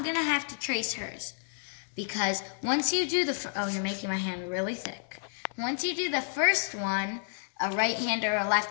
going to have to trace hers. Because once you do you're making my hand really thick. Once you do the first one, a right hand or a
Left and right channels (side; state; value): right; silent; 58 dB below the other